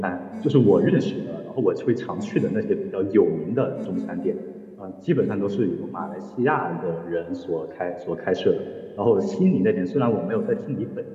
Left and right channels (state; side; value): identical; both; correlation 1.00